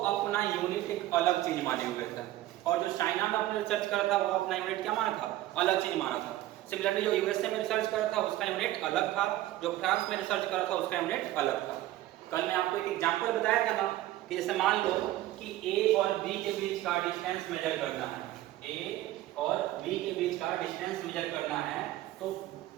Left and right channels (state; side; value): quieter; left; 15.1 dB